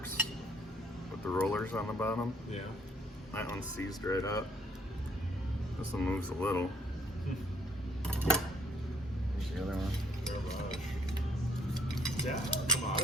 with the rollers on the bottom. Yeah. That one's seized right up. This one moves a little. Here's the other one. Garbage. Yeah, come on.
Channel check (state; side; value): normal; both; correlation 0.65